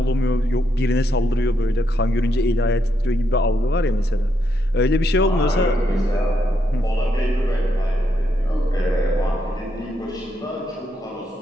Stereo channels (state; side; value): normal; both; correlation 0.79